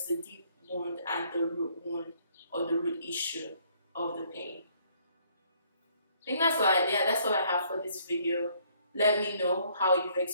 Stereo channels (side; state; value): both; inverted; correlation -0.65